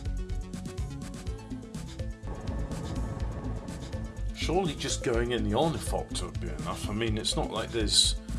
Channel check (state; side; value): identical; both; correlation 1.00